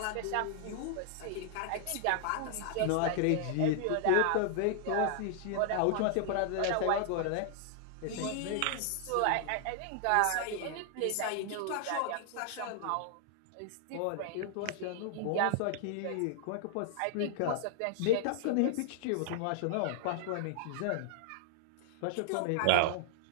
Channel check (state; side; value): different; both; correlation -0.01